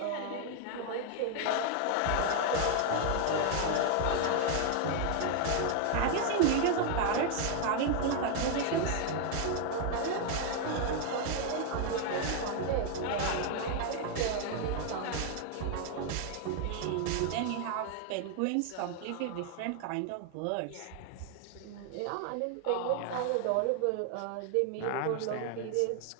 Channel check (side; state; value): both; different; correlation 0.00